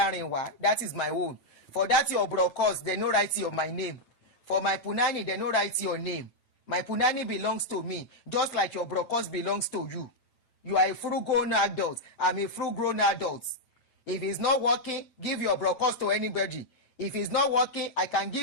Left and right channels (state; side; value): late; right; 8.9 ms